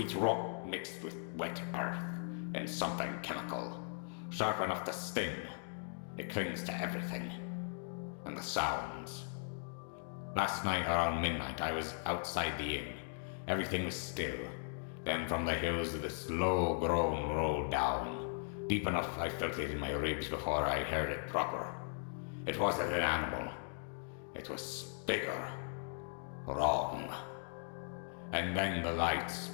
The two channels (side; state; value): right; silent; digital silence